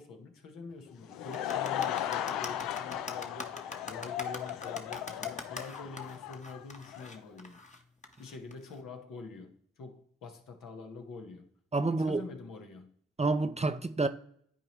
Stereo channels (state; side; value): normal; both; correlation 0.52